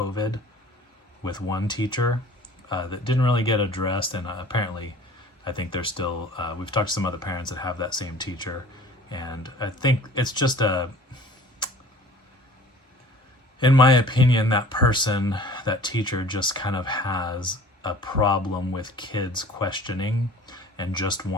with one teacher that didn't really get addressed, and apparently I think there's still, we've talked to some other parents that have that same teacher, and I think it's just in my opinion, that teacher just kind of has a problem with kids questioning and just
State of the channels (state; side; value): normal; both; correlation 0.47